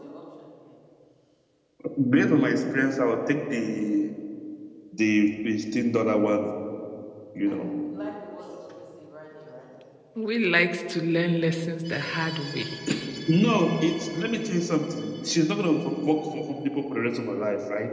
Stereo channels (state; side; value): identical; both; correlation 1.00